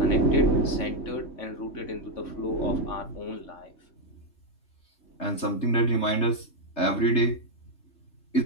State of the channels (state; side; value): late; right; 3.3 ms